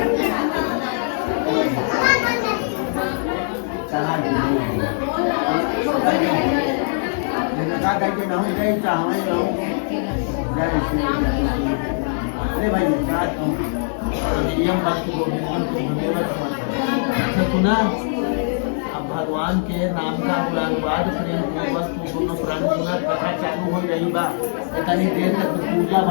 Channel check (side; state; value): right; silent; 62 dB below the other